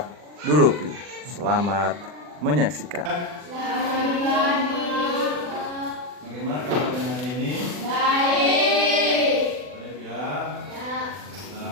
Dulupi. Selamat menyaksikan. Bagaimana kabarnya hari ini? Baik ya.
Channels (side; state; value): left; late; 40 ms